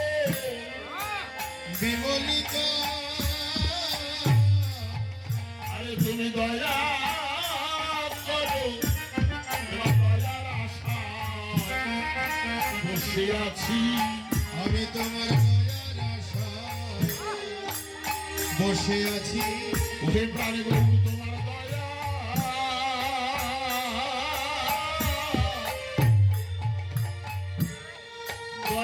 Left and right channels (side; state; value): both; identical; correlation 1.00